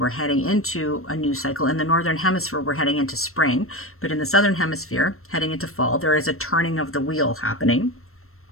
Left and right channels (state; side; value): late; right; 0.62 ms